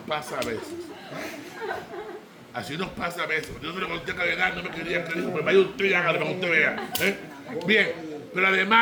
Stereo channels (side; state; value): both; identical; correlation 1.00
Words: a veces. Así nos pasa a veces. Yo se lo conté a Cardenal, no me quería creer. Pues vaya usted y hágalo para que usted vea. Bien, pero